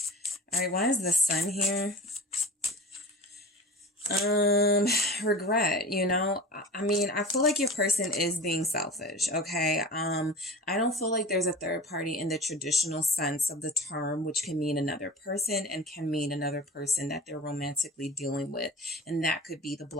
All right, why is the Sun here? Regret, you know, I mean, I feel like your person is being selfish. Okay. I don't feel like there's a third party in the traditional sense of the term, which can mean another person and can mean another person that they're romantically dealing with. And that could be the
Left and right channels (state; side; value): normal; both; correlation 0.35